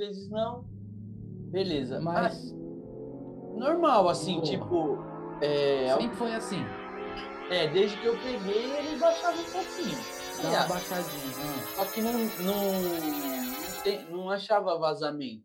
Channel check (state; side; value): identical; both; correlation 1.00